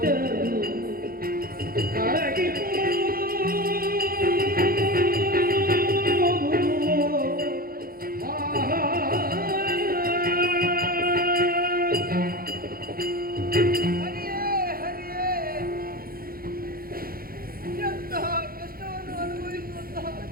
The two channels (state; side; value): late; left; 0.43 ms